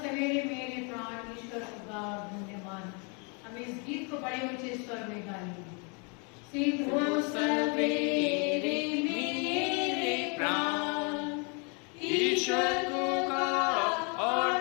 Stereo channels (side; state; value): right; quieter; 34.7 dB